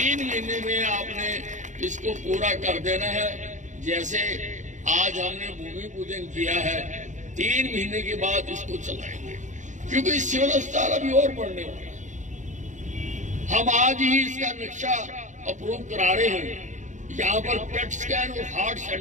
महीने में आपने इसको पूरा कर देना है। जैसे आज हमने भूमि पूजन किया है, 3 महीने के बाद इसको चलाएंगे, क्योंकि सिविल अस्पताल अभी और बढ़ने वाला है। हम आज ही इसका नक्शा अप्रूव करा रहे हैं। यहाँ पर पेट स्कैन और हार्ट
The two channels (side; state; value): left; late; 0.36 ms